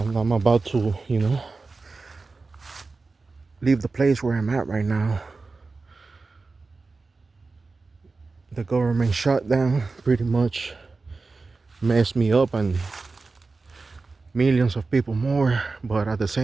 I'm about to, leave the place where I'm at right now. The government shutdown pretty much messed me up and millions of people more, but at the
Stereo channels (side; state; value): left; quieter; 3.9 dB